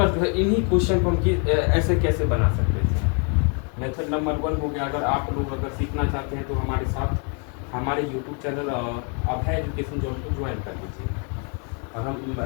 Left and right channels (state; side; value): quieter; right; 38.3 dB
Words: जो है इन्हीं क्वेश्चन को हम ऐसे कैसे बना सकते हैं। मेथड नंबर 1 हो गया। अगर आप लोग अगर सीखना चाहते हैं तो हमारे साथ हमारे यूट्यूब चैनल अभय एजुकेशन जोन को ज्वाइन कर लीजिए। और हम